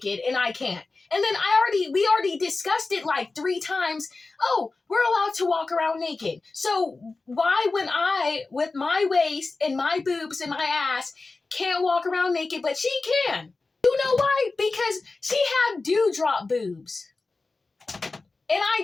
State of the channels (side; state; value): right; quieter; 3.7 dB